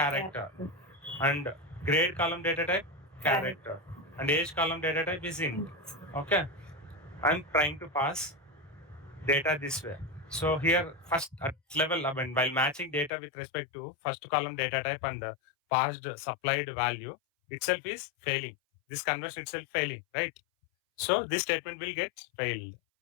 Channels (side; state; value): right; drops out; at 13.1 s